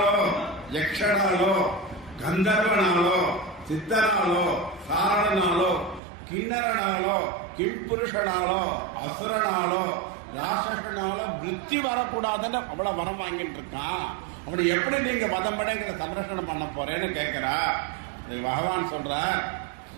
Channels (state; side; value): drops out; left; at 6.0 s